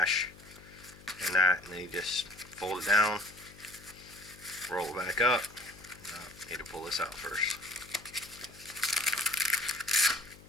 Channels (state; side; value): noise; left; hum, 21 dB below the sound